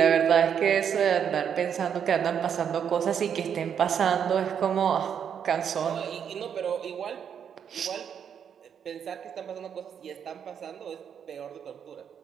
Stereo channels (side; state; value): left; quieter; 8.0 dB